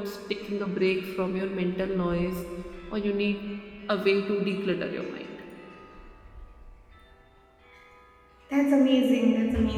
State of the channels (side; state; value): both; identical; correlation 1.00